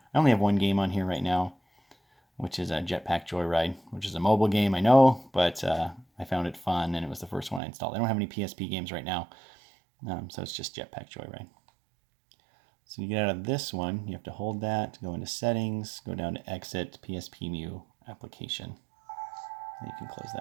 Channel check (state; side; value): drops out; left; at 7.6 s